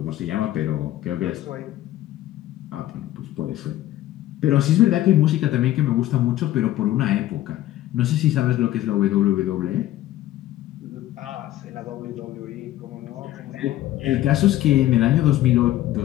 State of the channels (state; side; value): quieter; right; 14.2 dB